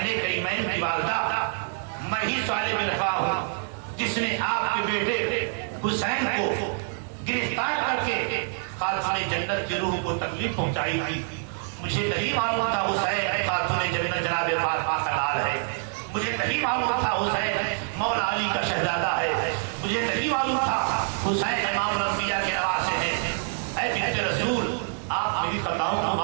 کریمین کی والدہ، میں ہی صالح بن رفاع ہوں جس نے آپ کے بیٹے حسین کو گرفتار کر کے خاتون جنت کی روح کو تکلیف پہنچائی تھی۔ مجھے نہیں معلوم تھا حسین خاتون جنت جناب فاطمہ کا لال ہے، مجھے نہیں معلوم تھا حسین مولا علی کا شہزادہ ہے، مجھے نہیں معلوم تھا حسین امام الانبیاء کے نواسے ہیں۔ اے بنت رسول، آپ میری خطاؤں کو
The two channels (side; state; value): left; silent; 61 dB below the other